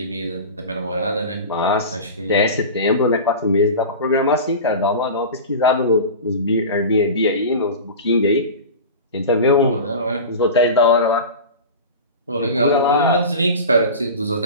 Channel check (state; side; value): inverted; both; correlation -0.31